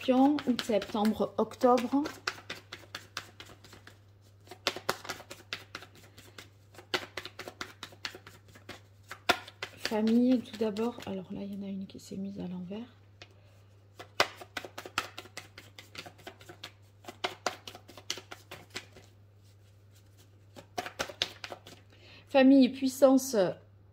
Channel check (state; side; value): identical; both; correlation 1.00